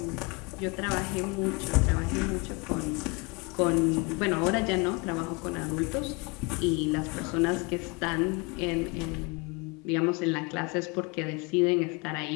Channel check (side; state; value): right; quieter; 28.3 dB